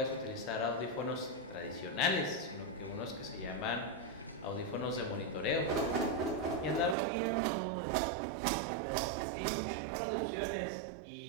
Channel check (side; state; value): left; drops out; at 7.0 s